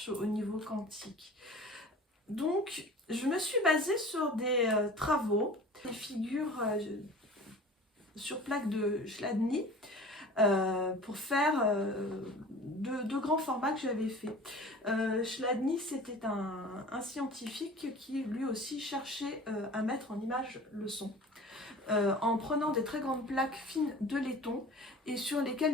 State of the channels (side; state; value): both; normal; correlation 0.41